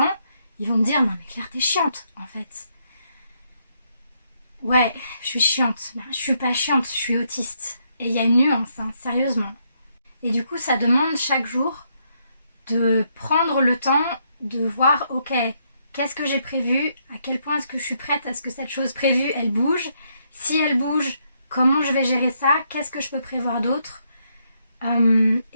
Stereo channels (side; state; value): both; inverted; correlation -0.75